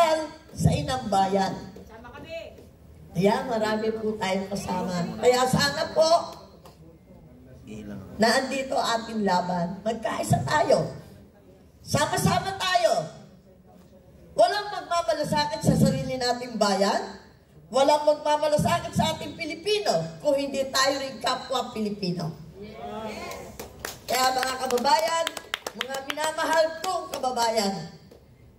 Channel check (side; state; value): both; identical; correlation 1.00